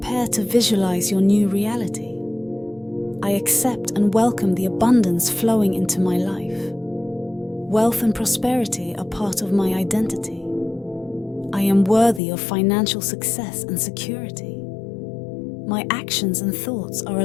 to visualize your new reality. I accept and welcome the abundance flowing into my life. Wealth and prosperity are part of my identity. I am worthy of financial success and security. My actions and thoughts are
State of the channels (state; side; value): drops out; right; at 12.2 s